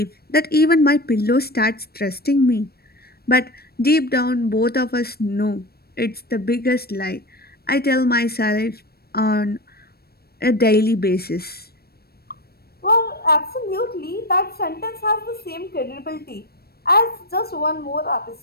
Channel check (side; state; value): right; late; 0.46 ms